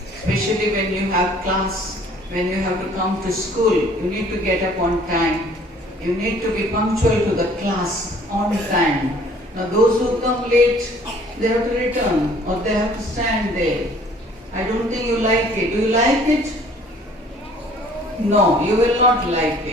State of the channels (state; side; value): normal; both; correlation 0.55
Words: Especially when you have class, when you have to come to school, you need to get up on time. You need to be punctual to the class on time. Now those who come late, they have to return or they have to stand there. I don't think you like it. Do you like it? No, you will not like